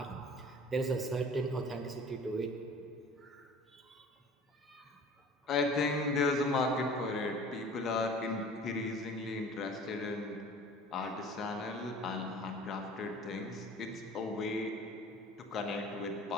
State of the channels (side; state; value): both; normal; correlation 0.45